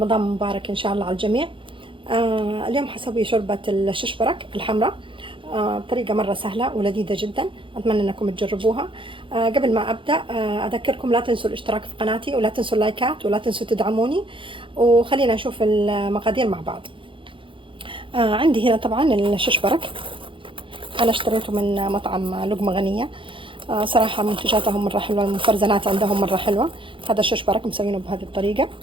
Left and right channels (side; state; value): left; late; 0.25 ms